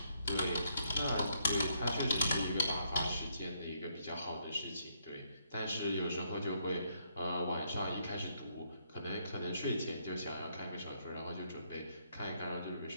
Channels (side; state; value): both; inverted; correlation -0.73